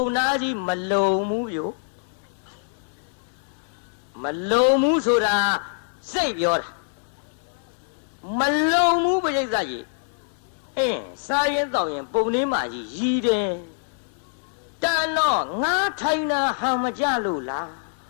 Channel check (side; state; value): right; silent; digital silence